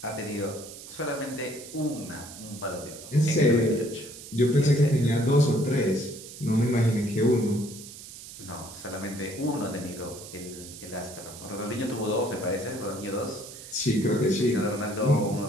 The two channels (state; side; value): noise; right; hiss, 14 dB below the sound